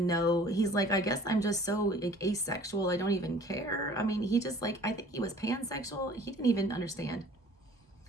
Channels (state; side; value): normal; both; correlation 0.50